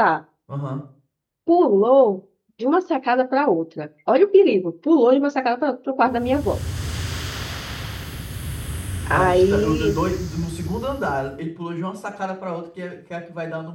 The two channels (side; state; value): both; identical; correlation 1.00